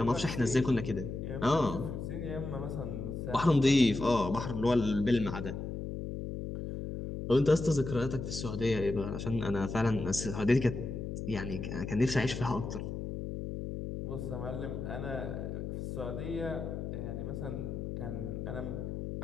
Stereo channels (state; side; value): noise; left; hum, 5 dB below the sound